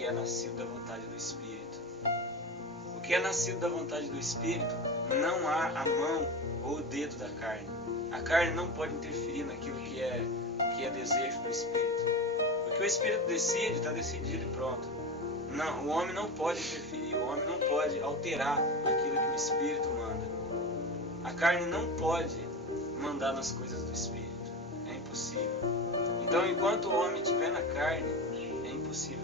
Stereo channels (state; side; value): normal; both; correlation 0.24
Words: é nascido da vontade do Espírito. O que é nascido da vontade do Espírito, não há a mão ou o dedo da carne. A carne não pode interferir naquilo que é desejo do Espírito. O que o Espírito decide, está decidido e pronto. Não, o homem não pode interferir, o homem não pode alterar aquilo que o Espírito manda. A carne não pode mandar nas coisas do Espírito. É impossível. Então, enquanto o homem estiver na carne, é impossível